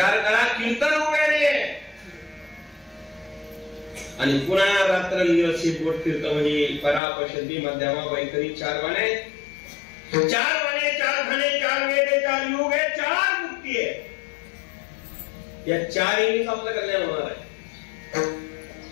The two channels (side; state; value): right; drops out; at 7.0 s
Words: करा, कीर्तन उभ्याने आणि पुन्हा रात्रंदिवस बोट फिरत. म्हणजे परापशंती मध्यमा वैखरी 4 वाणे, 4 वाणे, 4 खाणे, 4 वेद, 4 युग आहे, 4 मुक्ती आहे. या 4 येणीच आपलं कल्याण होणार आहे.